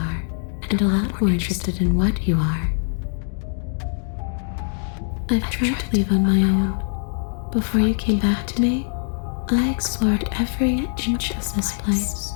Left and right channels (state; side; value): silent; right; 56 dB below the other